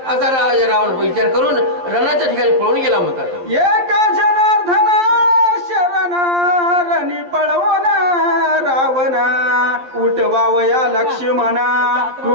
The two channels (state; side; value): late; left; 11 ms